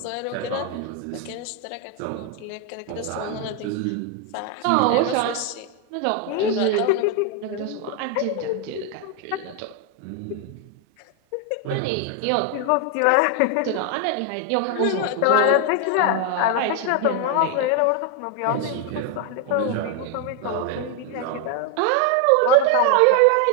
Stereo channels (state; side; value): different; both; correlation 0.01